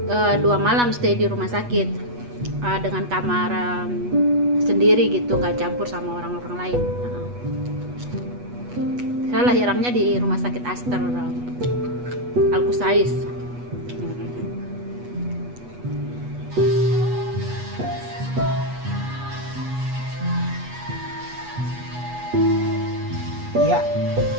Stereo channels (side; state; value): left; late; 8.2 ms